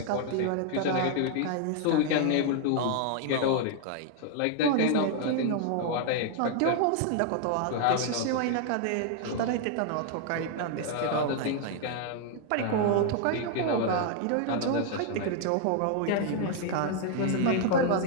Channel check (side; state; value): both; different; correlation 0.00